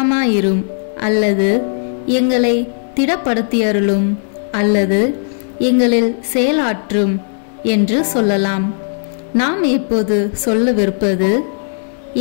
அல்லது எங்களை திடப்படுத்தியருளும் அல்லது எங்களில் செயலாற்றும் என்று சொல்லலாம். நாம் இப்போது சொல்லவிருப்பது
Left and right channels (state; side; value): silent; right; 63 dB below the other